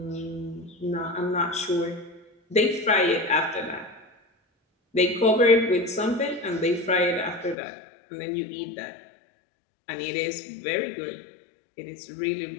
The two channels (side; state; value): right; drops out; at 7.6 s